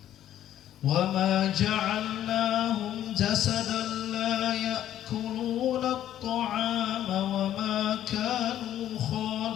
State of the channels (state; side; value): quieter; right; 11.7 dB